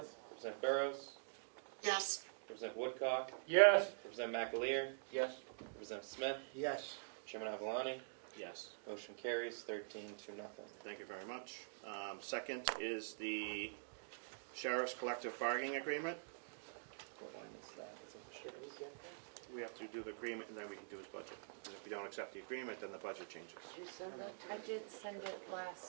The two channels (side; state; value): left; silent; digital silence